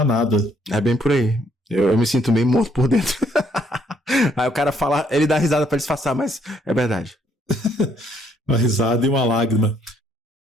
nada. É bem por aí. Eu me sinto meio morto por dentro. Aí o cara fala, ele dá risada pra disfarçar, mas é verdade. Uma risada e uma lágrima.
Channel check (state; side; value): normal; both; correlation 0.68